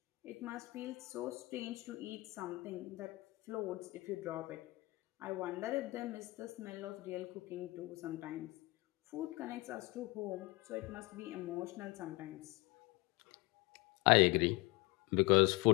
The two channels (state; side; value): quieter; right; 22.5 dB